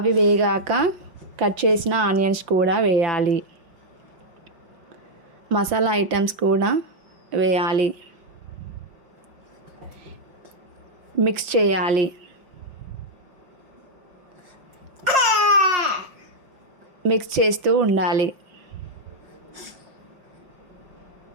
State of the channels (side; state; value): left; late; 5.6 ms